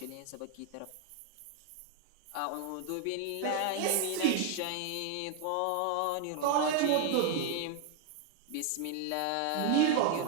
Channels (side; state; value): both; different; correlation 0.00